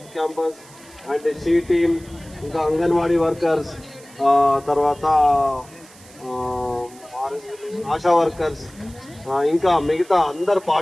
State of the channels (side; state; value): right; noise; hiss, 23 dB below the sound